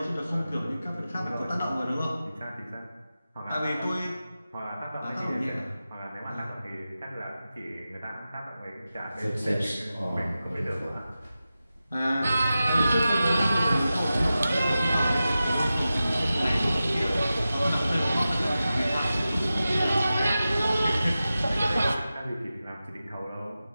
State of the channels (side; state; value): both; inverted; correlation -0.94